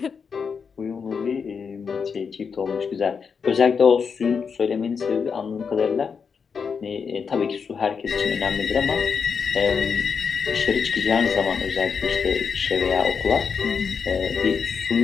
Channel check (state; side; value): quieter; right; 6.0 dB